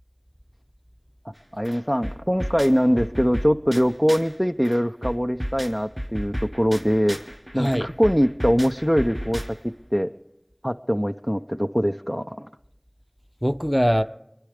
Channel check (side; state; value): both; identical; correlation 1.00